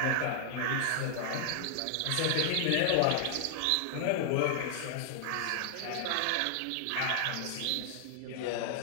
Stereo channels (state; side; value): different; both; correlation -0.01